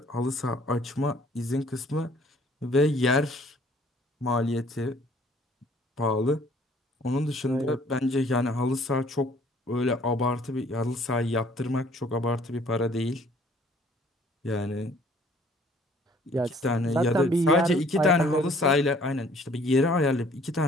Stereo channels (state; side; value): normal; both; correlation 0.58